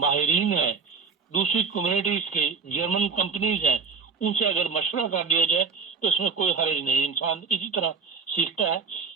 ہیں، دوسری کمیونٹیز کے جرمن کمپنیز ہیں، ان سے اگر مشورہ کر دیا جائے تو اس میں کوئی حرج نہیں، انسان اسی طرح سیکھتا ہے۔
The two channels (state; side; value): quieter; left; 5.3 dB